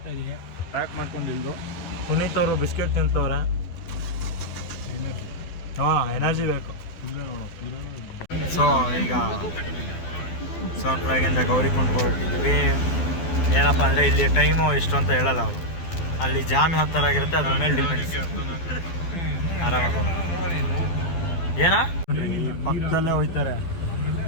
ಇದೆಯಾ? ಪ್ಯಾಕ್ ಮಾಡ್ಕೊಂಡಿದ್ದು. ಪುನೀತ್ ಅವರು ಬಿಸ್ಕೆಟ್ ತಿಂತವ್ರೆ. ಹಾಂ, ಎನರ್ಜಿ ಬೇಕು. ಸೊ ಈಗ ಸೋನ್ಪ್ರಯಾಗಿಂದ ಗೌರಿಕುಂಡ್ ಹೊರಟಿದ್ವಿ. ಏನಪ್ಪ ಅಂದರೆ ಇಲ್ಲಿ ಟೈಮು ಎಷ್ಟು ಅಂತ ಹೇಳಲ್ಲ ಅವರು. ಅಲ್ಲಿ ಜಾಮ್ ಯಾವ ಥರ ಆಗಿರುತ್ತೆ ಅದ್ರ ಮೇಲೆ ಡಿಪೆಂಡ್ಸ್. ಆರಾಮಾಗ ಏನಾ ಈ ಪಕ್ಕದಲ್ಲೇ ಹೋಯ್ತಾರೆ.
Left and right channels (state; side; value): late; right; 12 ms